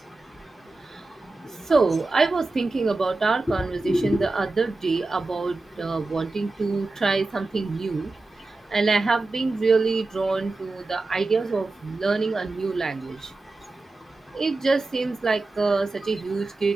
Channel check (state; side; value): quieter; left; 3.3 dB